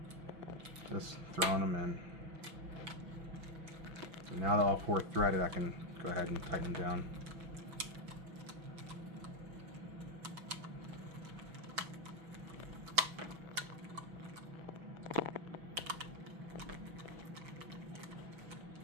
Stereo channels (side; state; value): left; late; 6.1 ms